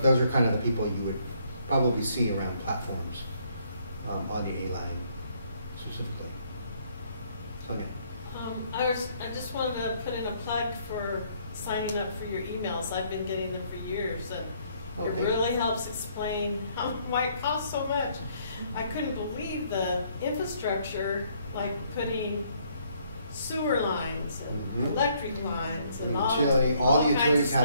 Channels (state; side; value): inverted; both; correlation -0.67